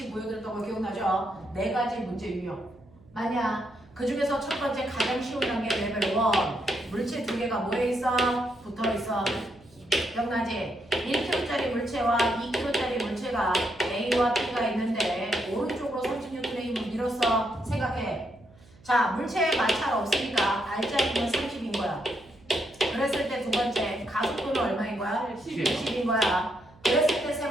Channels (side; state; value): right; noise; hum, 26 dB below the sound